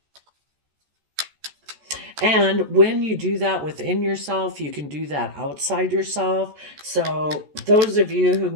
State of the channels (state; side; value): late; left; 14 ms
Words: And when you do that within yourself, you can do that outside yourself. So, those of you who